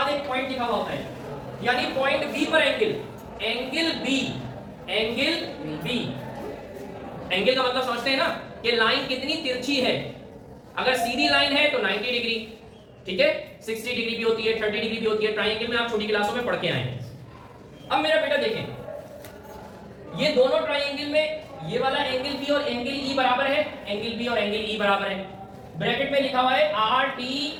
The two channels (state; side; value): identical; both; correlation 1.00